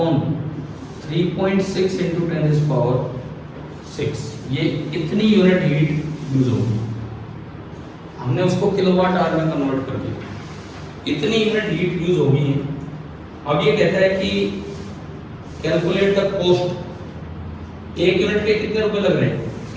3.6 × 10⁶। ये इतनी यूनिट हीट यूज होगी। हमने उसको किलोवाट आवर में कन्वर्ट कर दिया। इतनी यूनिट हीट यूज होगी। अब ये कहता है कि कैलकुलेट द कॉस्ट। 1 यूनिट के कितने रुपए लग रहे हैं?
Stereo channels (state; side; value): identical; both; correlation 1.00